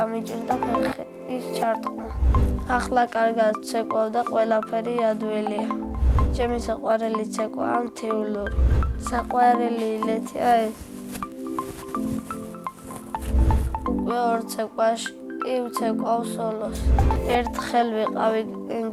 ფეხის ჩარტყმა. ახლა კარგად ვცეკვავ და ყველაფერი ადვილია. ჩემი საყვარელი ცეკვაა მთიულური. საყვარელი ილეთია ეს. უკვე 2 ცეკვაში ვცეკვავ სოლოს. ერთხელ ვიყავი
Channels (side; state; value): both; identical; correlation 1.00